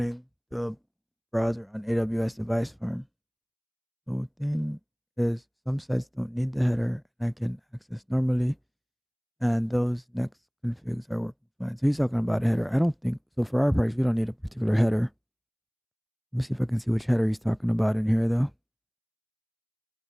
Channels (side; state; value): both; identical; correlation 1.00